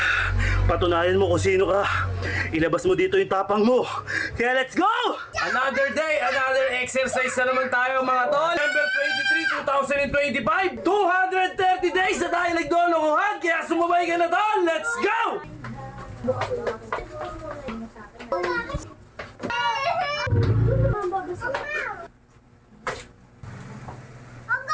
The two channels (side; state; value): both; identical; correlation 1.00